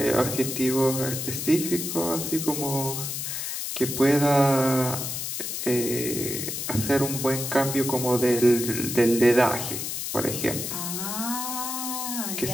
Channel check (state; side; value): noise; left; hiss, 4 dB below the sound